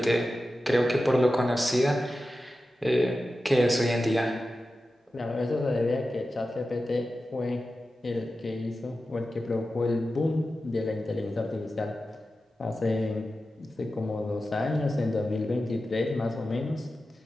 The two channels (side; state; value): both; normal; correlation 0.93